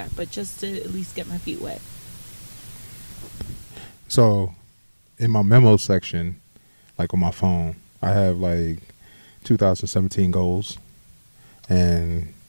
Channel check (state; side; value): inverted; both; correlation -1.00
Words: But just to at least get my feet wet. So in my memo section, on my phone, I have 2017 goals. And